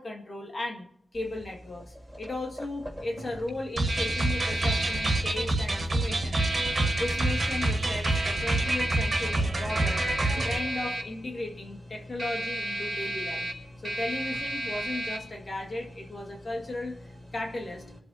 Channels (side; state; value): both; normal; correlation 0.88